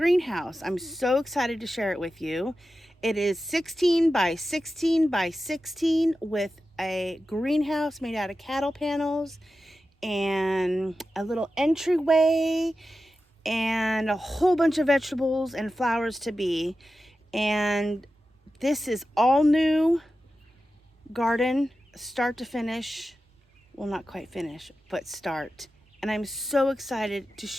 I'm so excited to share it with you. It is 16 by 16 by 16 with a greenhouse made out of cattle panels and a little entryway and a whole bunch of vegetables and flowers to be. And this is all new garden, start to finish. Well, not quite finish, but start. And I'm so excited to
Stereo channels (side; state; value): both; normal; correlation 0.92